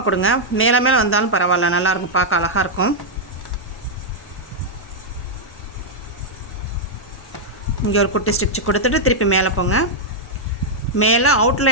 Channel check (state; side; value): normal; both; correlation -0.05